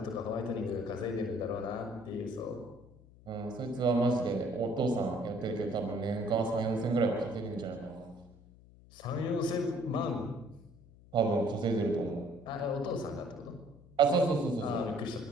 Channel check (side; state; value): left; noise; hum, 23 dB below the sound